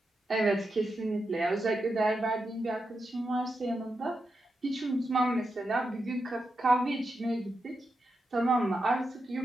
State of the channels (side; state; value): both; normal; correlation 0.87